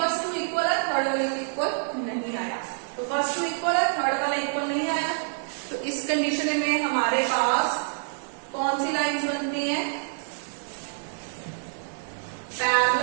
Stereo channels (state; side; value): silent; left; digital silence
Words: टू इक्वल है, थर्ड वाले इक्वल नहीं आया। तो फर्स्ट टू इक्वल है, थर्ड वाला इक्वल नहीं आया। तो इस कंडीशन में हमारे पास कौन सी लाइंस बनती हैं,